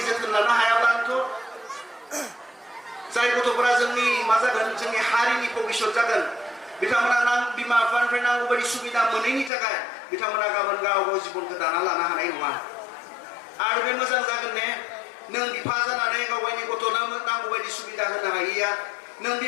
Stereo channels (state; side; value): drops out; right; at 9.5 s